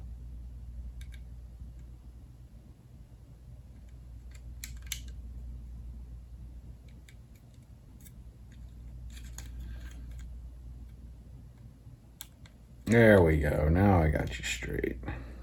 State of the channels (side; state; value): both; identical; correlation 1.00